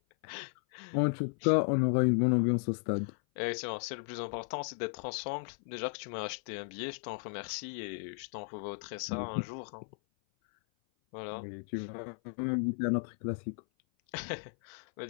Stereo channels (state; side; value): silent; right; 54 dB below the other